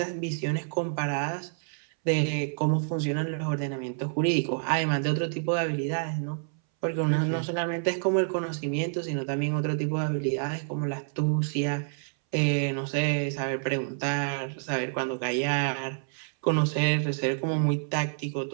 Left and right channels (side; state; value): left; silent; 59 dB below the other